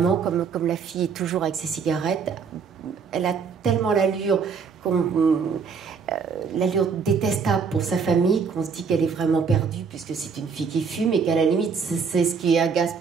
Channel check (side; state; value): left; quieter; 5.7 dB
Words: comme la fille est toujours avec ses cigarettes, elle a tellement l'allure l'allure détestable pour sa famille qu'on se dit qu'elle est vraiment perdue puisque c'est une fille qui fume et qu'à la limite c'est ce qui agace